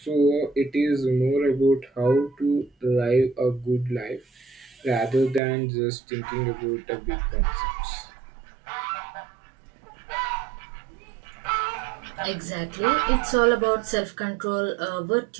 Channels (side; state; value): left; drops out; at 5.4 s